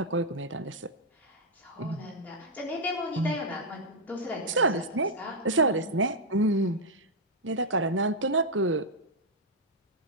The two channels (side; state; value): both; normal; correlation -0.04